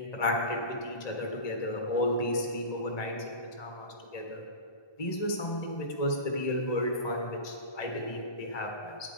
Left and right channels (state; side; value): late; right; 1.2 ms